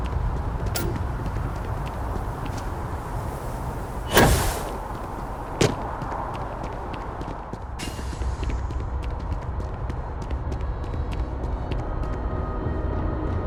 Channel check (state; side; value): identical; both; correlation 1.00